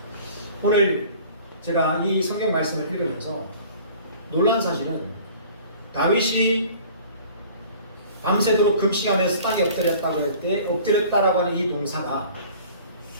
오늘 제가 이 성경 말씀을 읽으면서 놀란 사실은 다윗이 밤새도록 금식하면서 땅에 엎드렸다고 할 때 엎드렸다라고 하는 이 동사가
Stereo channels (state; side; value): inverted; both; correlation -0.47